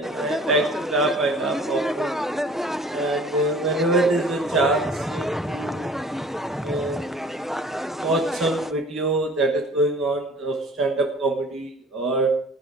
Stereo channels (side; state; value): both; normal; correlation 0.49